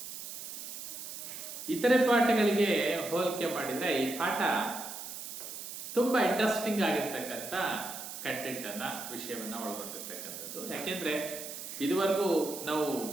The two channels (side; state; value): right; noise; hiss, 9 dB below the sound